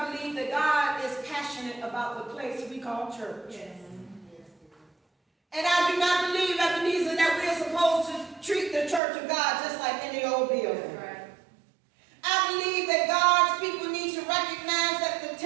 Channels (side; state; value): left; drops out; at 9.0 s